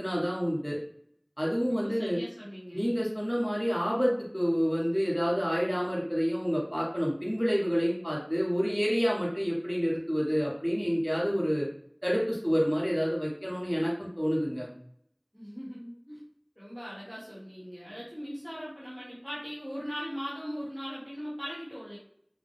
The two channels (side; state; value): both; identical; correlation 1.00